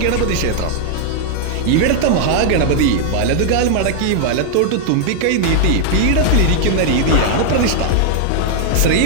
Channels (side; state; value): both; different; correlation 0.00